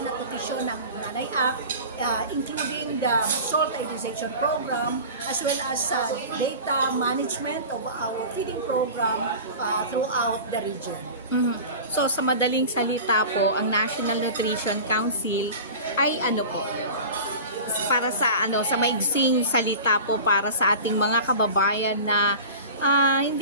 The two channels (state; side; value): inverted; both; correlation -0.35